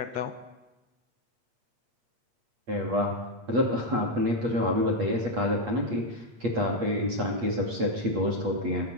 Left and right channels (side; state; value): left; late; 8.5 ms